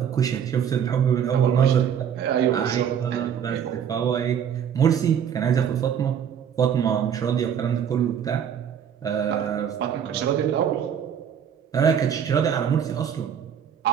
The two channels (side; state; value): left; quieter; 8.4 dB